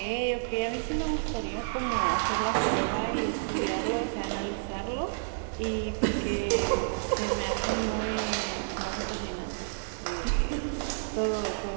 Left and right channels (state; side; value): silent; left; digital silence